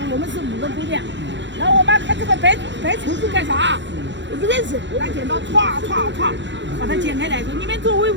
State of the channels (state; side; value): late; left; 0.53 ms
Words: 我们是5个姑娘，然后我妈看这个白绸子干啥？我不认识，拿剪刀歘把它剪开来，说你们做围